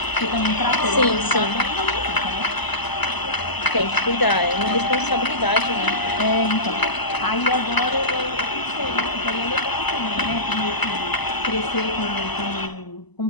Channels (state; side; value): late; right; 1.0 ms